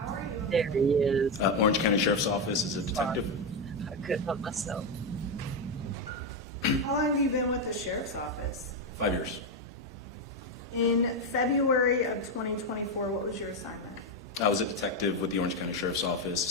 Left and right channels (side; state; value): both; normal; correlation 0.07